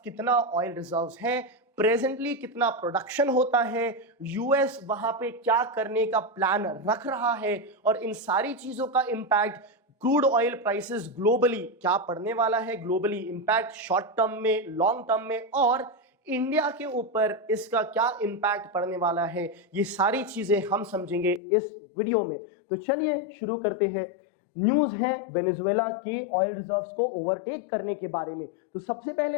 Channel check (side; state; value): right; drops out; at 21.4 s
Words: कितना ऑयल रिजर्व्स है, प्रेजेंटली कितना प्रोडक्शन होता है, यूएस वहां पे क्या करने का प्लान रख रहा है और इन सारी चीजों का impact crude oil prices globally क्या पड़ने वाला है, ग्लोबली इंपैक्ट शॉर्ट टर्म में, लॉन्ग टर्म में, और इंडिया के ऊपर इसका क्या इंपैक्ट पड़ने वाला है, ये सारी चीजें हम समझेंगे इस वीडियो में। तो चलिए शुरू करते हैं। न्यूज है वेनेजुएला के ऑयल रिजर्व्स को ओवरटेक करने के बारे में। तो सबसे